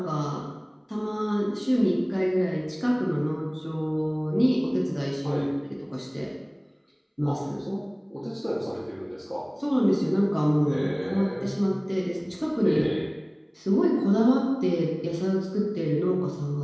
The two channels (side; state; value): both; identical; correlation 1.00